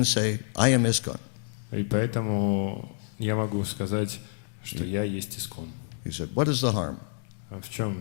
say, I am ISKCON. И поэтому я могу сказать, что я есть Искон. He said, what is the harm? В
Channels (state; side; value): silent; right; digital silence